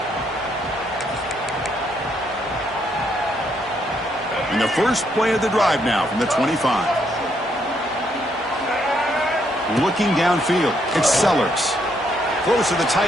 And the first play of the drive now from the 25. Looking downfield, it's Sellers. Throws to the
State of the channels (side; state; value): both; normal; correlation 0.74